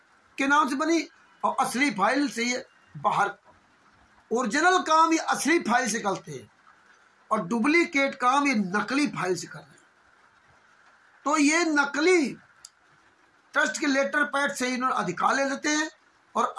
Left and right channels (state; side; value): identical; both; correlation 1.00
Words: के नाम से बनी और असली फाइल से ये बाहर, ओरिजिनल काम ये असली फाइल से करते हैं और डुप्लीकेट काम ये नकली फाइल से कर रहे हैं। तो ये नकली ट्रस्ट के लेटर पैड से इन्होंने अधिकार ले लेते हैं और